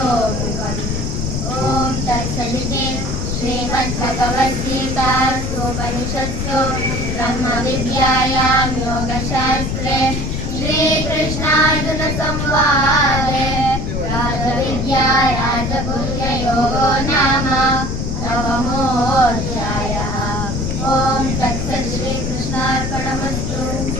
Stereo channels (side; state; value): left; noise; rumble, 2 dB below the sound